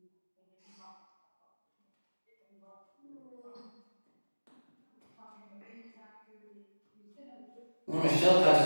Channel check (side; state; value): both; inverted; correlation -1.00